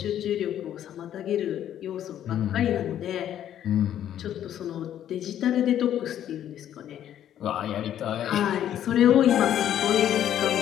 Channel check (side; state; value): right; quieter; 10.8 dB